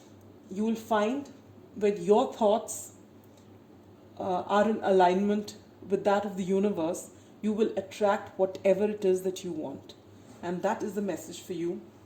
you will find that your thoughts are in alignment with that of the universe. You will attract whatever it is that you want, and that is the message for you,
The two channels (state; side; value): identical; both; correlation 1.00